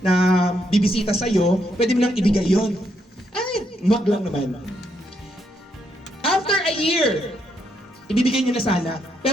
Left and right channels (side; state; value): both; normal; correlation 0.77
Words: bibisita sa'yo, pwede mo nang ibigay yun. Ay, mug lang naman. After a year, ibibigay niyo na sana.